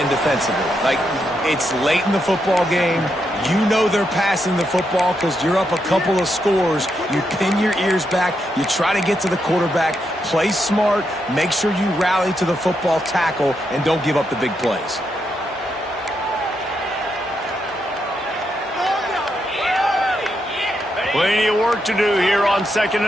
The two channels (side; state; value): both; normal; correlation 0.82